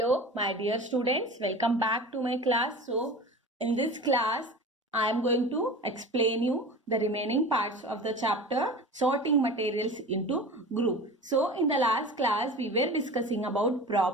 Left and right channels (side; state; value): both; normal; correlation 0.35